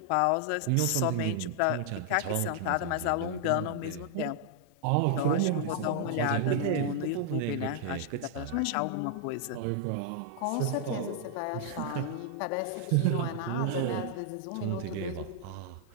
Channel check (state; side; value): different; both; correlation -0.01